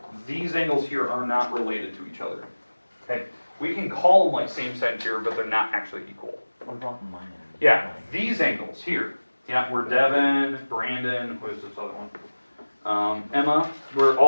these angles here are not related to each other. Okay, we can call them like same side here, but they're not actually equal. Yeah, these angles here. Yeah, we're Devin, Brandon, who is this other one? Emma, where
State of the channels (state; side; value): inverted; both; correlation -1.00